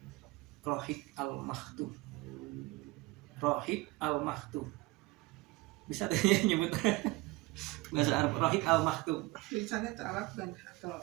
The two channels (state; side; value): quieter; left; 21.9 dB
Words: Rohik Al-Maktum. Rohik Al-Maktum. Bisa deh nyebut bahasa Arab, Rohik Al-Maktum. Tulisannya itu Arab dan atau